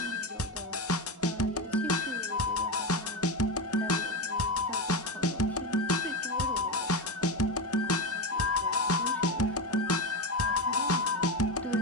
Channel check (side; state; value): both; normal; correlation 0.16